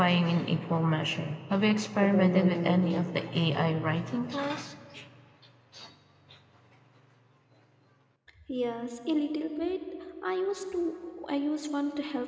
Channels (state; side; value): identical; both; correlation 1.00